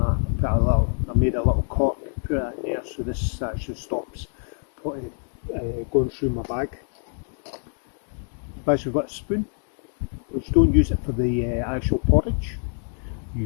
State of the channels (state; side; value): silent; right; 61 dB below the other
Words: I made a little cork, put it in there, so this actually stops going through my bag. I've actually got a spoon, which don't use it for the actual porridge,